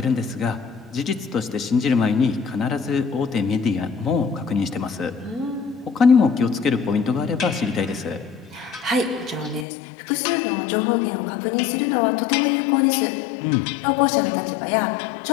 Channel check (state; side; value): drops out; right; at 9.7 s